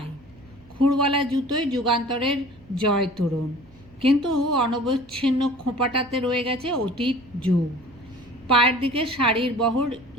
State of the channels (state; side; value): noise; right; hum, 25 dB below the sound